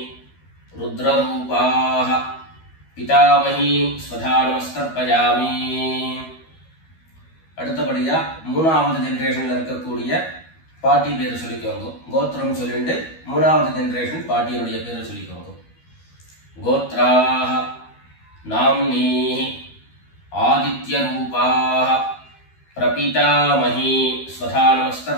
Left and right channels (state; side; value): late; right; 12 ms